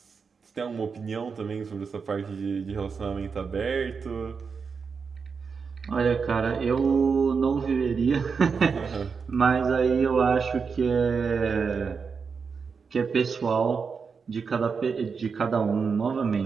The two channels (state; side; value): quieter; left; 5.5 dB